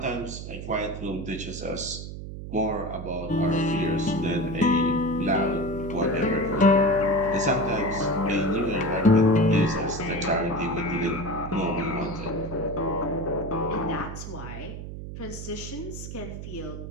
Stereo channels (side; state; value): right; noise; hum, 9 dB below the sound